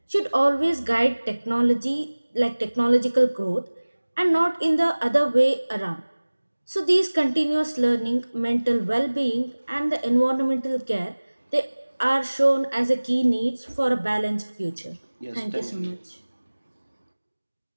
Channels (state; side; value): inverted; both; correlation -1.00